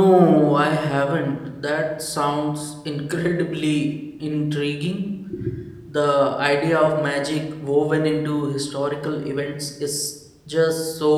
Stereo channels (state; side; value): identical; both; correlation 1.00